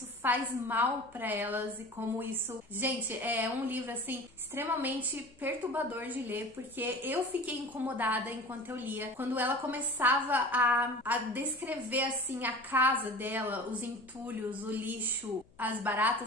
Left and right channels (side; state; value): left; noise; hum, 30 dB below the sound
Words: faz mal pra elas e como isso... Gente, é um livro, assim, extremamente perturbador de ler, porque eu fiquei incomodada enquanto eu lia. Quando ela começava a descrever, assim, a casa dela, os entulhos, o lixo, as